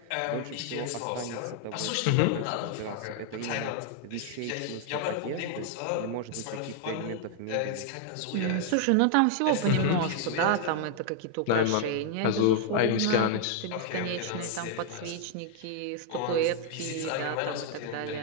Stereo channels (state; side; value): different; both; correlation 0.00